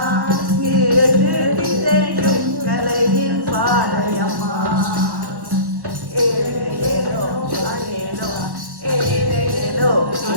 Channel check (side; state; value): left; late; 1.1 ms